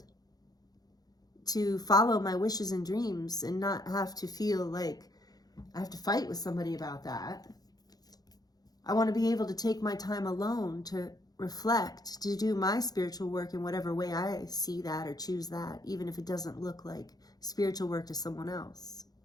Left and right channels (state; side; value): late; right; 0.19 ms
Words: to follow my wishes and dreams and not have to feel like I have to fight with somebody about that. I want to be able to take my time alone to reflect, to do my spiritual work in whatever way I see that or choose that, even if it doesn't look like spiritual work to someone else.